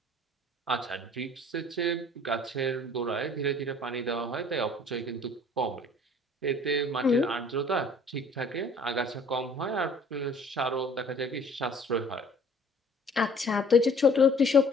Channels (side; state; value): both; normal; correlation 0.54